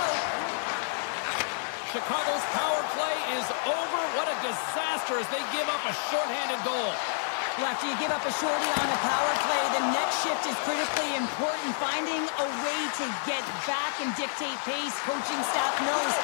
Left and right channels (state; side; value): silent; right; digital silence